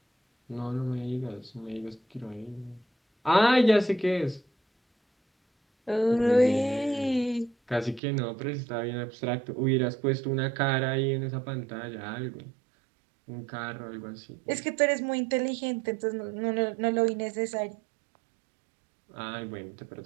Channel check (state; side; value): drops out; left; at 8.0 s